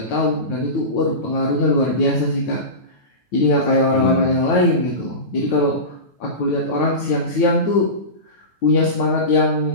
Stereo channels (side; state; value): right; late; 9.2 ms